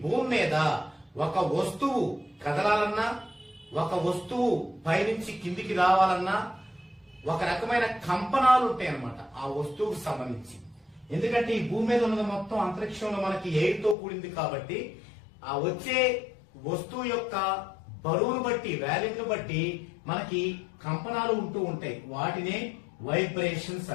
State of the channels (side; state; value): right; drops out; at 14.0 s